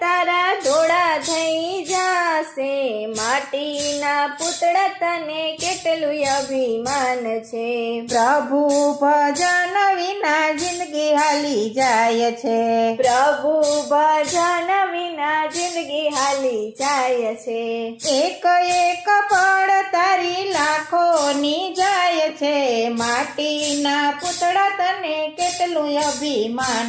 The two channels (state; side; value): identical; both; correlation 1.00